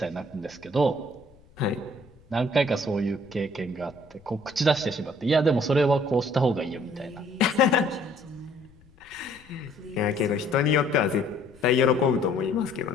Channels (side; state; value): left; noise; rumble, 27 dB below the sound